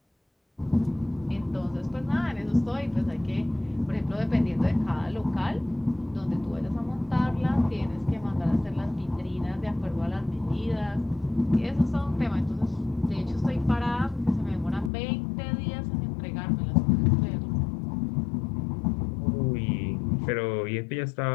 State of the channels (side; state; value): right; drops out; at 14.9 s